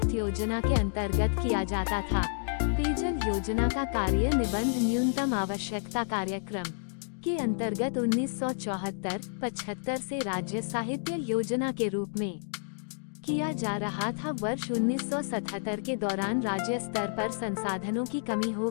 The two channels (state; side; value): silent; right; digital silence